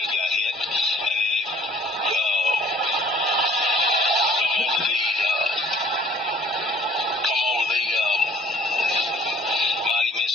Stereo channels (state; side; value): normal; both; correlation 0.55